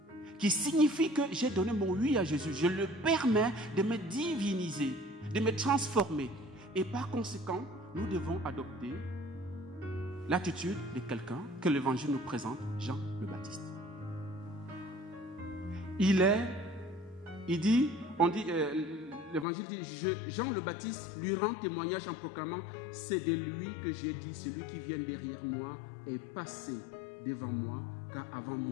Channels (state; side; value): drops out; right; at 19.5 s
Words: qui signifie que j'ai donné mon oui à Jésus. Je le permets de me diviniser, de me transformer. Et par conséquent, nous devons adopter l'attitude de quelqu'un que l'Évangile nous présente, Jean le Baptiste. L'Évangile dit, Jean le Baptiste lui rend témoignage en proclamant, c'est de lui que j'ai dit, celui qui vient derrière moi est passé devant moi, car avant